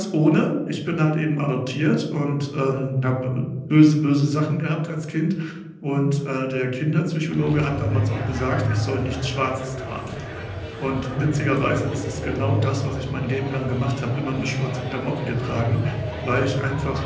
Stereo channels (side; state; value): both; identical; correlation 1.00